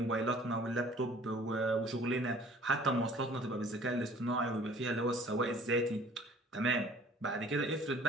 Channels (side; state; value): both; normal; correlation 0.52